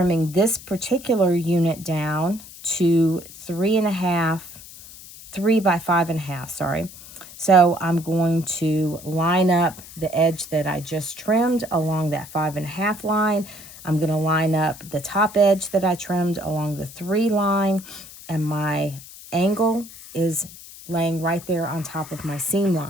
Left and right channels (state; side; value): noise; left; hiss, 17 dB below the sound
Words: this particular unit down to 3 by 5.5, sorry. So I'm going to line up the edge that I just trimmed along that 5.5 line. I'm going to line up the top edge that I trimmed along the 3 line, and my angle is laying right there on top of my seam